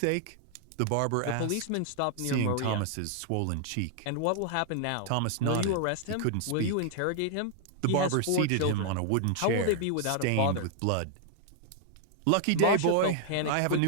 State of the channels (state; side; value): different; both; correlation 0.00